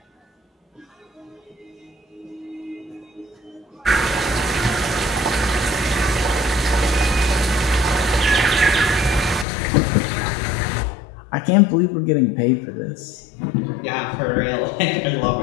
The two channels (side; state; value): right; drops out; at 9.5 s